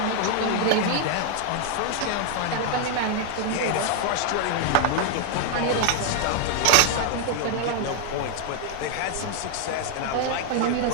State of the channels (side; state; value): both; different; correlation 0.00